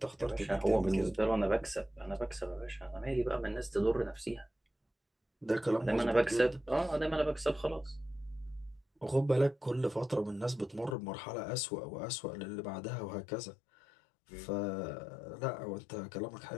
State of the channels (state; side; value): drops out; right; at 11.0 s